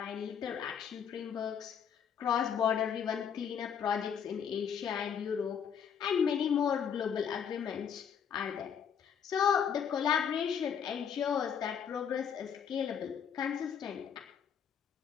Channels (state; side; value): quieter; right; 7.8 dB